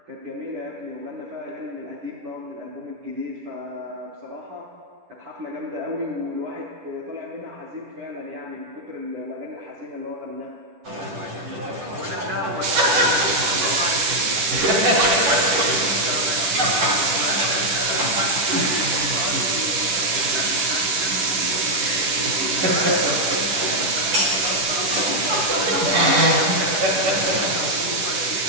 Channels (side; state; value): left; late; 10 ms